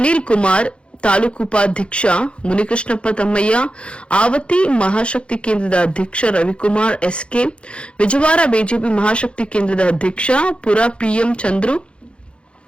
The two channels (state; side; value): late; right; 0.058 ms